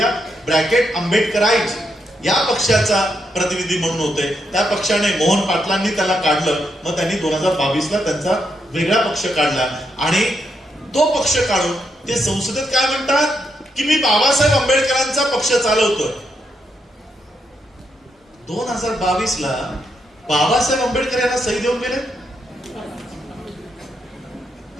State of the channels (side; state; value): both; normal; correlation 0.80